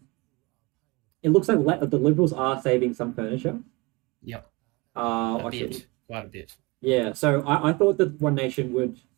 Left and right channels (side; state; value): left; quieter; 25.6 dB